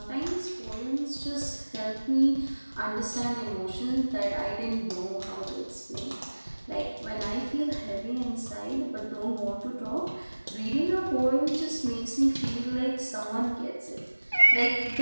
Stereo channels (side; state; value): both; inverted; correlation -1.00